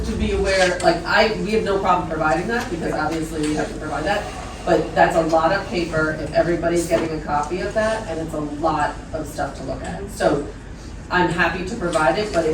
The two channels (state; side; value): identical; both; correlation 1.00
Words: to be aware, like we have no problem providing that, because obviously we have to provide that. But that's a lot of paper if everybody's getting a copy of that, and it's a lot of stuff to look at. So I'm happy to provide it, but